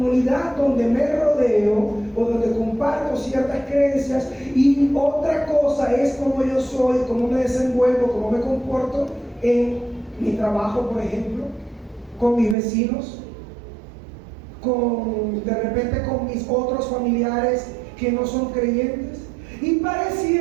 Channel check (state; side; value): drops out; left; at 12.6 s